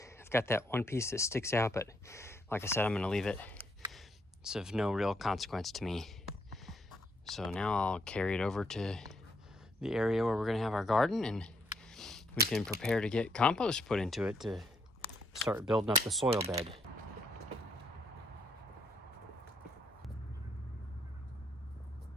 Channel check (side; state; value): both; normal; correlation 0.74